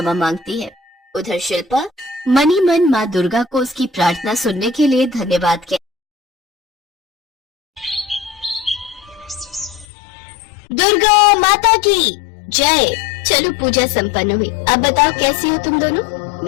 मांगती है। उधर शिल्पा मन ही मन माँ दुर्गा को उसकी प्रार्थना सुनने के लिए धन्यवाद कहती। दुर्गा माता की जय। चलो पूजा संपन्न हुई। अब बताओ कैसी हो तुम दोनों?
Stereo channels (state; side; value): drops out; right; at 9.9 s